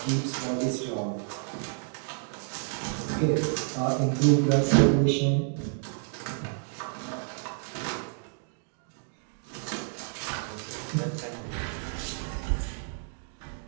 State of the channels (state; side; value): silent; left; 58 dB below the other